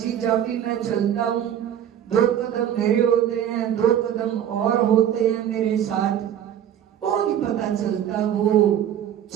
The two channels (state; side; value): quieter; left; 10.1 dB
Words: जब भी मैं चलता हूँ 2 कदम मेरे होते हैं, 2 कदम और होते हैं मेरे साथ, वो नहीं पता चलता। वो